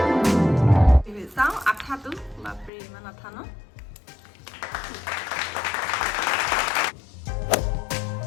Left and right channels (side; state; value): right; drops out; at 2.7 s